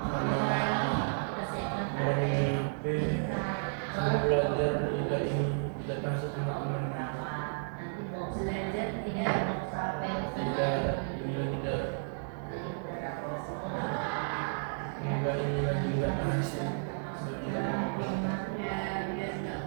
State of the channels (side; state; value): left; silent; digital silence